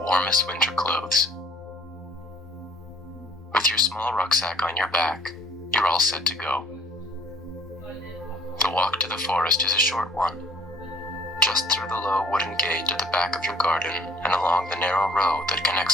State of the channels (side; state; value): both; normal; correlation 0.55